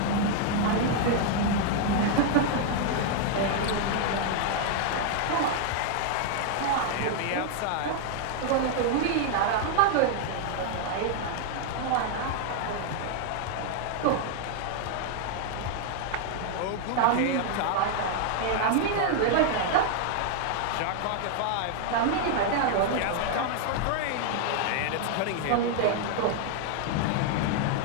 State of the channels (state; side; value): different; both; correlation 0.00